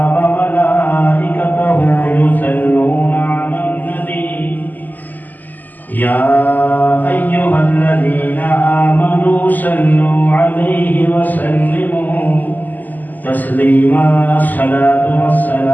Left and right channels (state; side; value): late; right; 0.084 ms